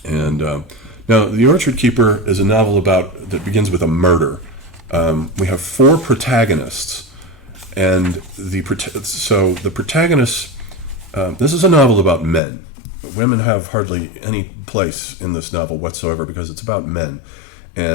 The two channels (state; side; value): drops out; right; at 12.4 s